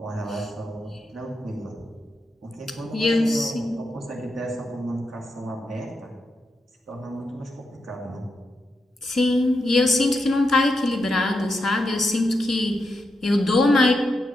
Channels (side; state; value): both; normal; correlation 0.85